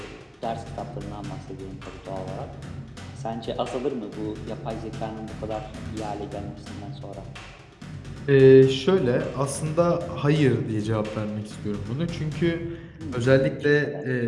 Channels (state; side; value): identical; both; correlation 1.00